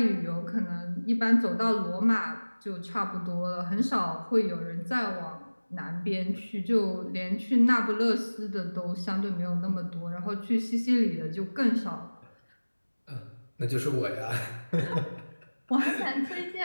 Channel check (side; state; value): both; inverted; correlation -1.00